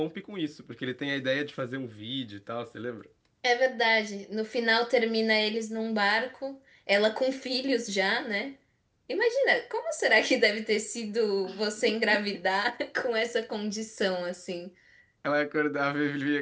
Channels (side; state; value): both; identical; correlation 1.00